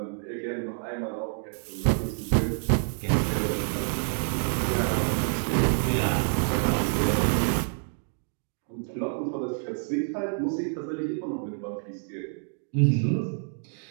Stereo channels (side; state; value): left; silent; 60 dB below the other